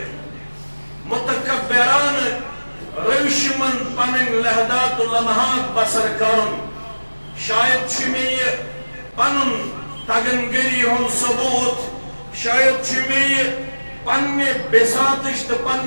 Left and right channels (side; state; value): both; inverted; correlation -1.00